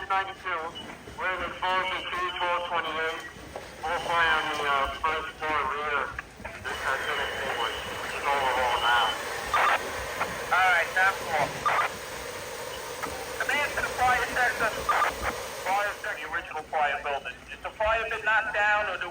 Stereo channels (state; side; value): identical; both; correlation 1.00